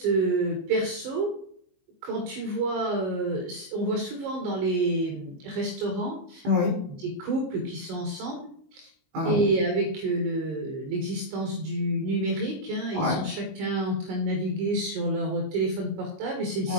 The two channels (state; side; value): late; left; 22 ms